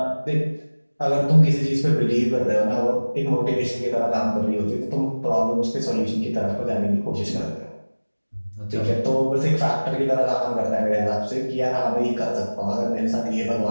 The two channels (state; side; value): inverted; both; correlation -1.00